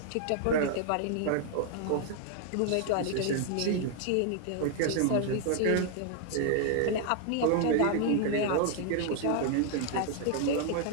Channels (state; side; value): different; both; correlation 0.00